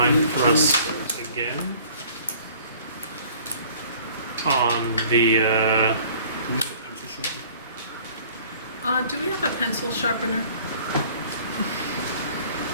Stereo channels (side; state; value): both; inverted; correlation -0.52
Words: thrust again on the. Do we have a pencil sharpener?